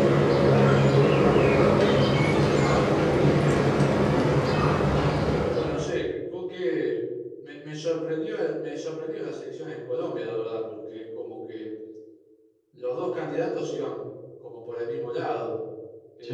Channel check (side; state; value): both; identical; correlation 1.00